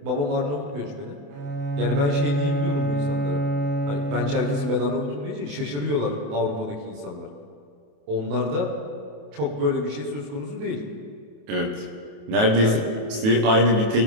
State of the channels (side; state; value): left; late; 28 ms